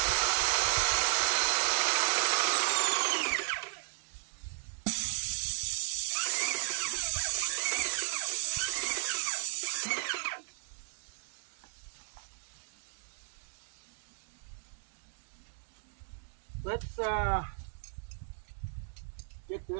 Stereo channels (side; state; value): left; silent; digital silence